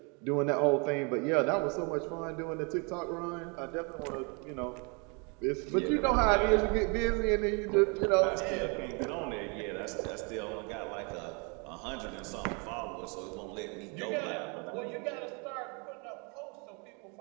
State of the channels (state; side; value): quieter; left; 33.1 dB